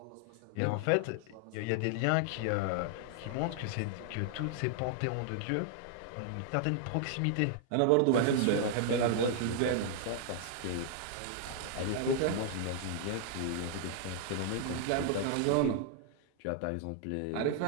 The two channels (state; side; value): different; both; correlation 0.00